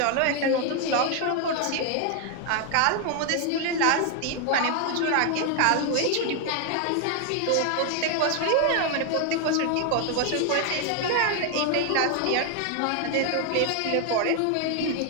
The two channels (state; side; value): different; both; correlation 0.01